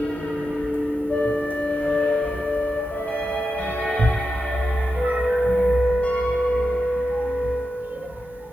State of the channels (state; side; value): normal; both; correlation 0.89